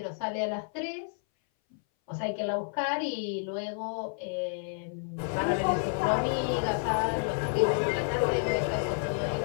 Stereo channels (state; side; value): silent; right; 58 dB below the other